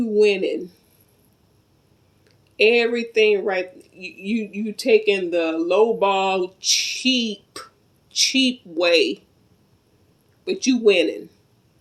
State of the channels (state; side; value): identical; both; correlation 1.00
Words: winning. Everything right. You taking the lowball cheap way. But you winning.